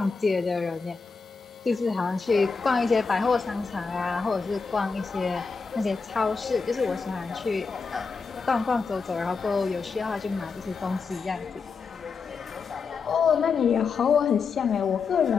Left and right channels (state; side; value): quieter; right; 5.0 dB